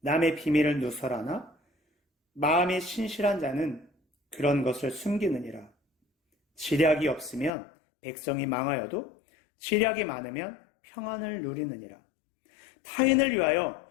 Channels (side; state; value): right; drops out; at 7.5 s